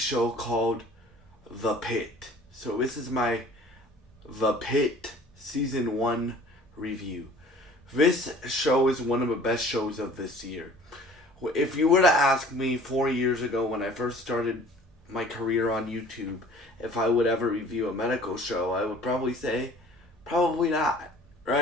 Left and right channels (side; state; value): both; normal; correlation 0.49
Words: called The Pitt. So this is my The Pitt Season 1 review. This show is one of the best shows of this year. If you were to ask me 4 years ago when I first started my career on YouTube if I would ever review a medical show, I would probably say, probably not.